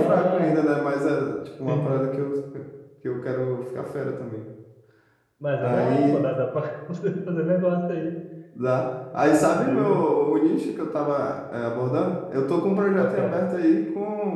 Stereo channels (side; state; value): both; identical; correlation 1.00